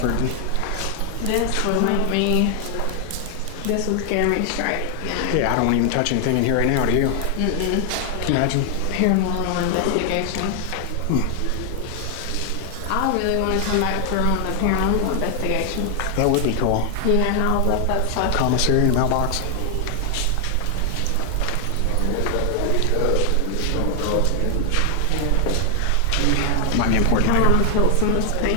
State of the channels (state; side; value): different; both; correlation 0.00